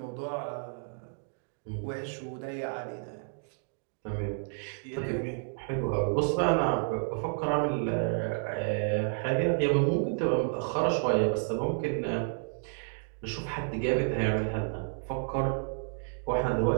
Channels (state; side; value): silent; left; 57 dB below the other